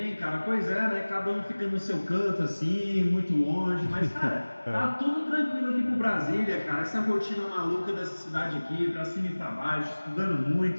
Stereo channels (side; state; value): both; inverted; correlation -1.00